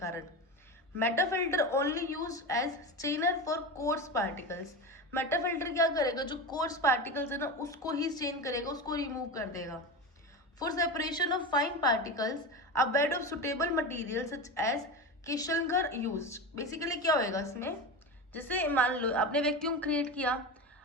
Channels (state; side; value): normal; both; correlation 0.23